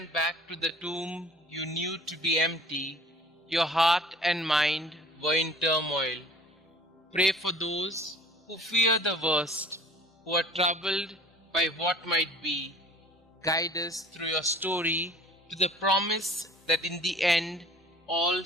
back to the tomb you knew to be empty, your heart and mind were in turmoil. Pray for those who fear the worst, who are troubled by what might be. Guide us through your story to the promise that in the end all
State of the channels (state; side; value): normal; both; correlation 0.48